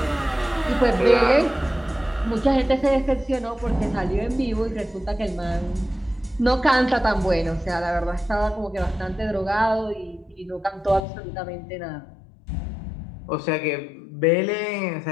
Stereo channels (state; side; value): drops out; right; at 11.0 s